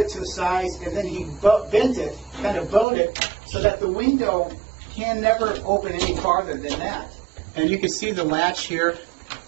to the size, and then he bent it, kind of bowed it, so that the window can never open any farther than that. And you can see the latch here.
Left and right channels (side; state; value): left; drops out; at 2.9 s